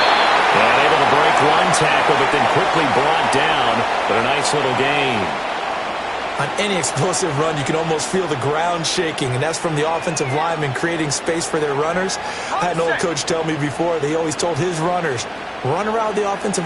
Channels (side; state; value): both; identical; correlation 1.00